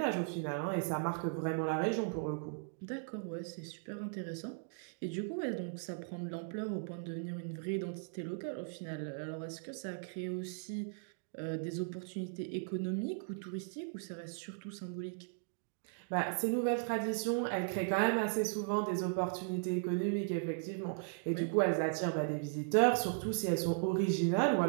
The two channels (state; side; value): silent; left; digital silence